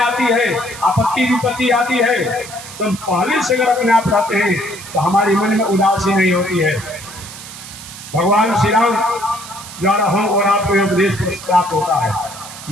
है, आपत्ति विपत्ति आती है, तो हम पहले से अगर अपने आप रहते हैं तो हमारे मन में उदासी नहीं होती है। भगवान श्री राम द्वारा हम और आपको उपदेश प्राप्त होता है।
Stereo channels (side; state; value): right; noise; hiss, 14 dB below the sound